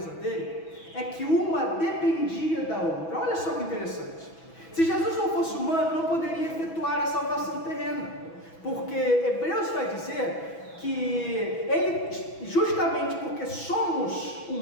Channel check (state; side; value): late; right; 6.1 ms